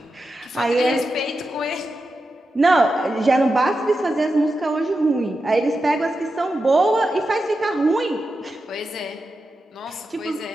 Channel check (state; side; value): normal; both; correlation 0.90